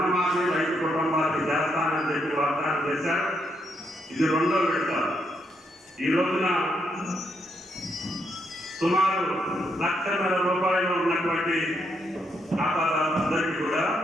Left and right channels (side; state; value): both; normal; correlation 0.77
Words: రైతు కుటుంబాలకు చేస్తానని చెప్పి వాగ్దానం చేశారు. ఇది 2వ విడత. ఈ రోజున సుమారు ₹1,00,000 ఉన్నటువంటి ఖాతాదారులందరికీ కూడా